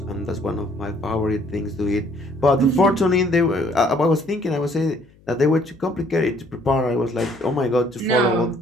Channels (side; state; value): left; noise; hum, 29 dB below the sound